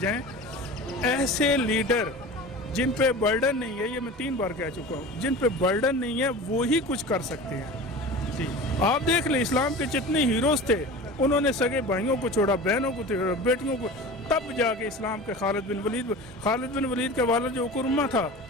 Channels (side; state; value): both; normal; correlation 0.35